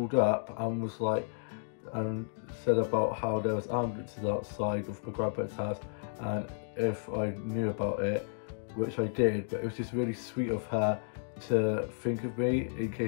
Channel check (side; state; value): right; silent; digital silence